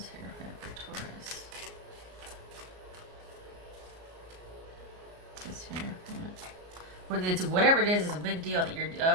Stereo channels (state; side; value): late; left; 33 ms